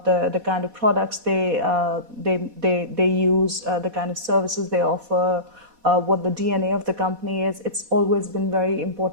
the kind of products they use, the kind of services they offer, what the DNA of the company is. It's always been very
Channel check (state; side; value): late; left; 4.1 ms